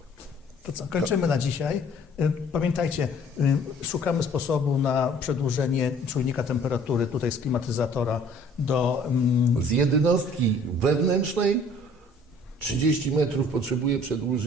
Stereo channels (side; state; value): both; normal; correlation 0.54